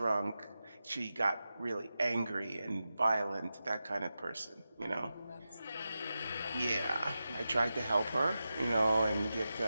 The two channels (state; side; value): inverted; both; correlation -0.92